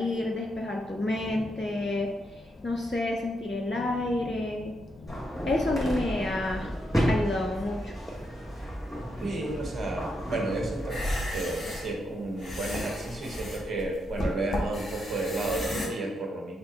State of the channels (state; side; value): normal; both; correlation 0.81